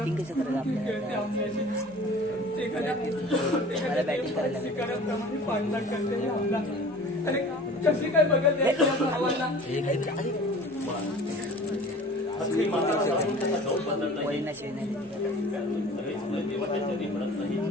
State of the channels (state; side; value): normal; both; correlation 0.43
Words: कसं करायला आपल्याला बॅटिंग करायला कशी काय बघत भावाला.